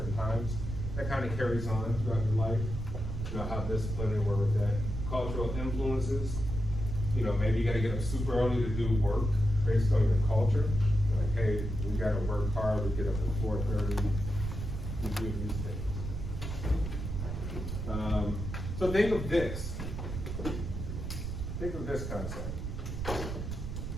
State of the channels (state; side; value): noise; right; rumble, 5 dB below the sound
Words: times. That kind of carries on throughout your life. You know, how disciplined they were with that. Cultural influences. You know, maybe you got to get up super early to do work based on your culture. Like, hey, we got to work hard. We get up at 4:30. We do these things. So think of this. Think of this concept.